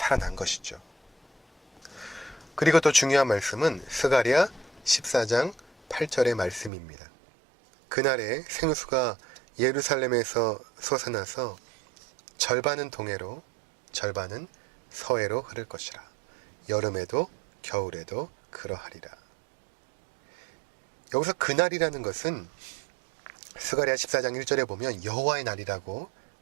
것이죠. 그리고 또 중요한 말씀은 스가랴 14장 8절의 말씀입니다. 그날에 생수가 예루살렘에서 솟아나서 절반은 동해로 절반은 서해로 흐를 것이라. 여름에도 겨울에도 그러하리라. 여기서 그날이라는 것은 스가랴 14장 1절에 보면 여호와의 날이라고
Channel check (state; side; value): drops out; left; at 6.7 s